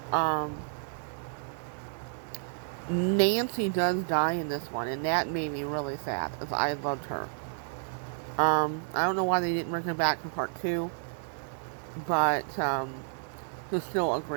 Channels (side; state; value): left; silent; digital silence